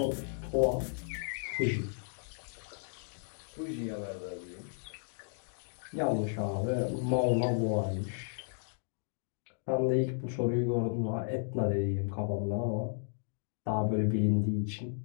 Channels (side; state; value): right; silent; digital silence